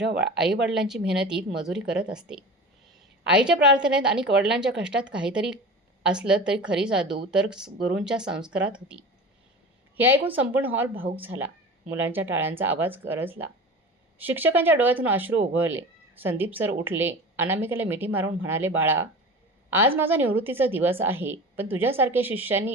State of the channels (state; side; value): normal; both; correlation 0.34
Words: आईवडिलांची मेहनतीत मजुरी करत असते. आईच्या प्रार्थनेत आणि वडिलांच्या कष्टात काहीतरी असलं तरी खरी जादू तर गुरूंच्या संस्कारात होती. हे ऐकून संपूर्ण हॉल भावूक झाला. मुलांच्या टाळ्यांचा आवाज गरजला. शिक्षकांच्या डोळ्यातून अश्रू ओघळले. संदीप सर उठले. अनामिकेला मिठी मारून म्हणाले, बाळा, आज माझा निवृत्तीचा दिवस आहे, पण तुझ्यासारख्या